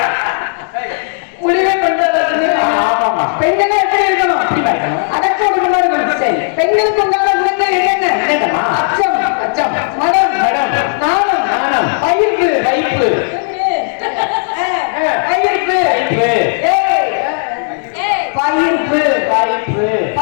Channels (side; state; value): right; silent; digital silence